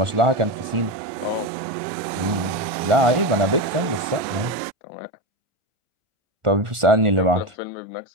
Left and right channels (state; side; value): late; left; 1.4 ms